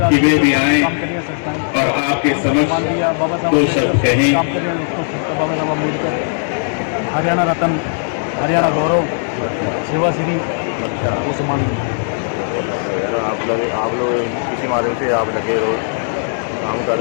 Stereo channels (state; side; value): silent; right; digital silence